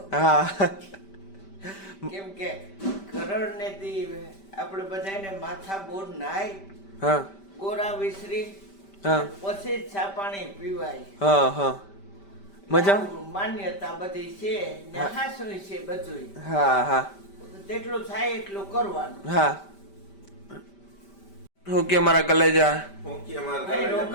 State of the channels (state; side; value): late; right; 5.1 ms